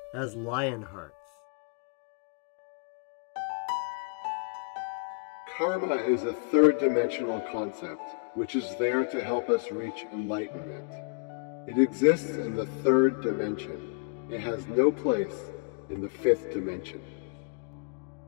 as Lionhearts. Karma is a third-dimensional concept, which is there to help us reach enlightenment. It exists in the third dimension. It has no place in the fifth dimension.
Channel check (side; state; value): right; quieter; 35.4 dB